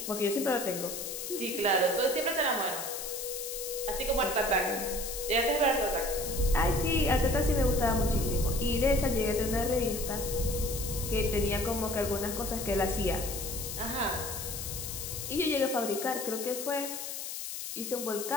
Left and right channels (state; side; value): noise; left; hiss, 6 dB below the sound